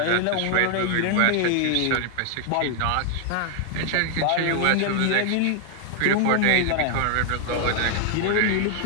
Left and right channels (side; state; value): both; different; correlation 0.00